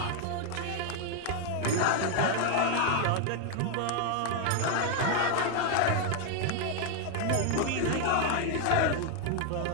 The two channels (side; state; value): both; different; correlation 0.00